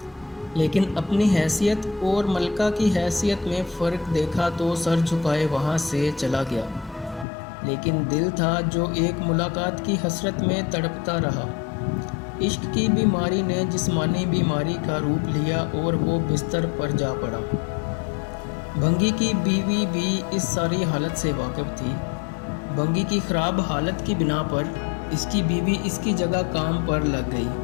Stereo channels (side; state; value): right; drops out; at 7.2 s